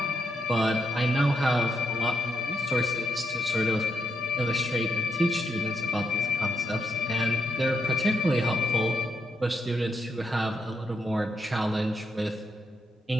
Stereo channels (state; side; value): normal; both; correlation 0.81